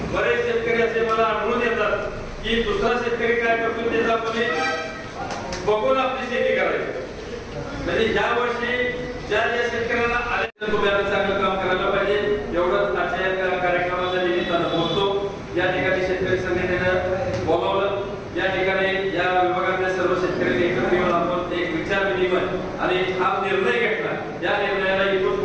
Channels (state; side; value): identical; both; correlation 1.00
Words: बरेच शेतकरी असे मला आढळून येतात की दुसरा शेतकरी काय करतो त्याचा आपण बघून आपली शेती करायची. म्हणजे या वर्षी ज्या शेतकऱ्यांना आले तुम्ही चांगलं काम करायला पाहिजे एवढंच आजच्या कार्यक्रमाच्या निमित्तानं बोलतो. या ठिकाणी शेतकरी संघटनेनं बोलावलं. या ठिकाणी या विभागातल्या सर्व शेतकऱ्यांनी एकत्र येऊन आपण एक विचार विनिमय आणि हा निर्णय घेतला. या निर्णयाला इथून